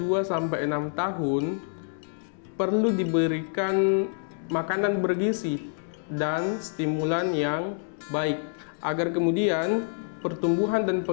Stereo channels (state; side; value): silent; right; digital silence